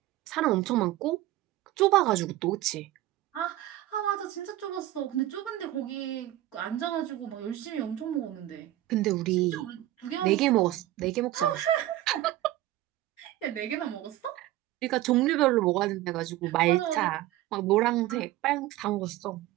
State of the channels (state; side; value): quieter; left; 15.1 dB